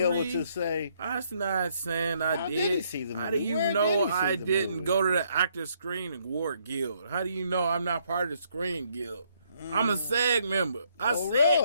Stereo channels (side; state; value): both; inverted; correlation -0.70